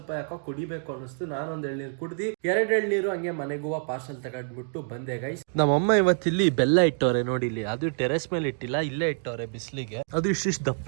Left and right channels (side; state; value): left; silent; 60 dB below the other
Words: ಯಾಕೋ ಕುಡಿಬೇಕು ಅನಿಸ್ತು. ನಾನೊಂದ್ ಎಳ್ನೀರು ಕುಡ್ದಿ, 2 ಎಳ್ನೀರು ಹಂಗೆ ಮನೆಗೂ ಪಾರ್ಸಲ್ ತಗೊಂಡ್ಬಿಟ್ಟು ಬಂದೆ ಗೈಸ್. ನಮ್ಮಮ್ಮ ಇವತ್ತಿಲ್ಲಿ ಬೆಲ್ಲ ಇಟ್ಟವ್ರೆ ನೋಡಿ, ಇಲ್ಲಿ ಅದು ಟೆರೆಸ್ ಮೇಲೆ ಇಟ್ಟಿಲ್ಲ, ಇಲ್ಲೇ ಇಟ್ಟವ್ರೆ ಬಿಸ್ಲಿಗೆ. ಅದು ಇಷ್ಟಿಷ್ಟು